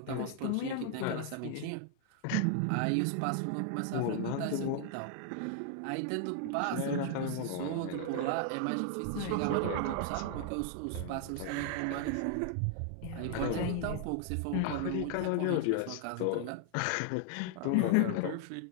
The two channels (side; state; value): both; different; correlation 0.00